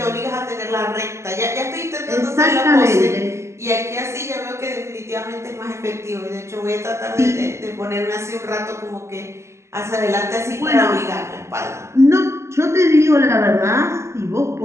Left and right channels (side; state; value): left; late; 0.13 ms